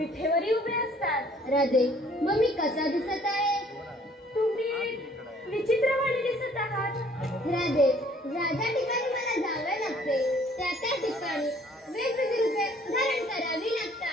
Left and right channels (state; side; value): normal; both; correlation 0.58